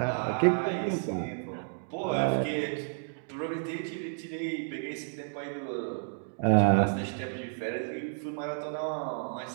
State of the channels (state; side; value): silent; left; digital silence